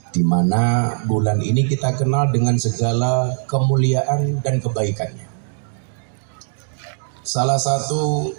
di mana bulan ini kita kenal dengan segala kemuliaan dan kebaikannya. Salah satu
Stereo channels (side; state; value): left; silent; digital silence